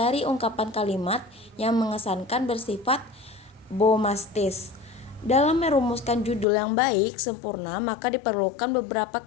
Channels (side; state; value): right; drops out; at 6.5 s